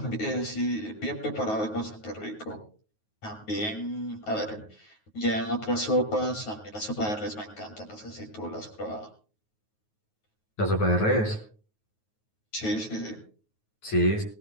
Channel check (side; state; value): right; late; 9.4 ms